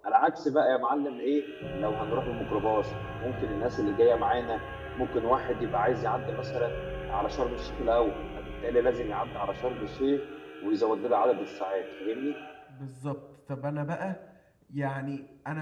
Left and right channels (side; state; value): both; identical; correlation 1.00